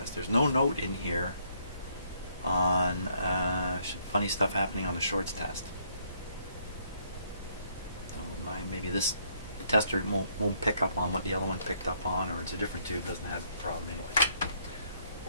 There's no note in here on funny stuff happening on the shorts test. So maybe this tester won't pick up on what the other one picked up on, or it's a different tube, doesn't have a problem anyway.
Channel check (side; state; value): both; inverted; correlation -0.69